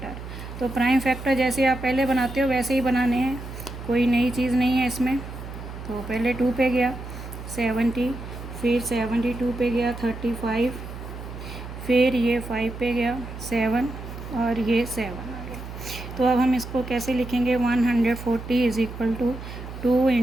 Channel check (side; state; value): right; noise; hum, 11 dB below the sound